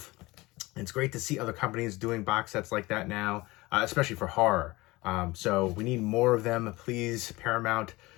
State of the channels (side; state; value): right; quieter; 21.1 dB